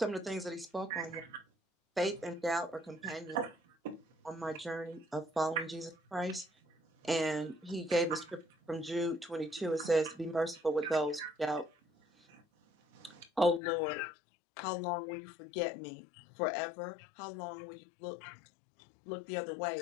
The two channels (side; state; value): right; drops out; at 13.6 s